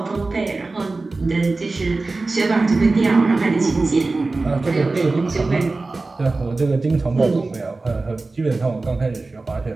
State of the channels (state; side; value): quieter; left; 3.5 dB